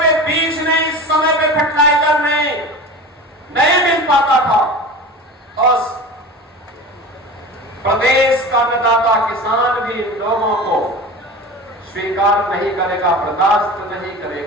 बीज नहीं, समय पे फर्टिलाइजर नहीं मिल पाता था। और प्रदेश का अन्नदाता किसान भी इन लोगों को स्वीकार नहीं करेगा, बर्दाश्त नहीं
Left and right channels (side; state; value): both; normal; correlation 0.33